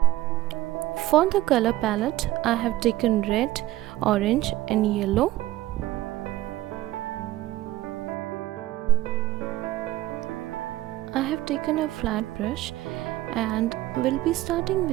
For the color palette, I have taken red, orange and yellow. I have taken a flat brush and will be starting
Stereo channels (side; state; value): left; quieter; 16.1 dB